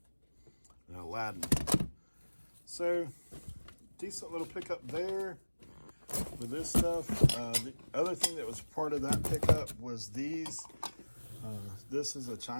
And Aladdin. So, decent little pickup there with this stuff. The other thing that was part of that pickup was these. This is a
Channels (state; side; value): inverted; both; correlation -1.00